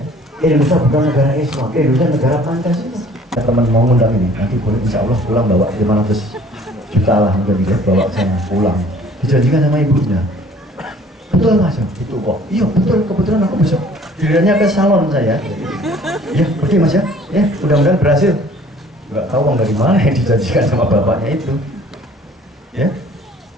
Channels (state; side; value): normal; both; correlation 0.53